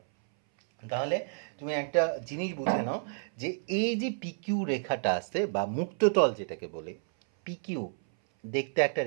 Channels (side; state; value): left; silent; 57 dB below the other